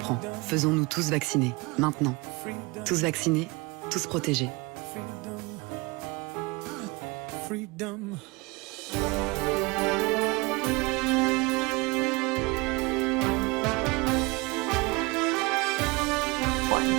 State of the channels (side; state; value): left; quieter; 25.9 dB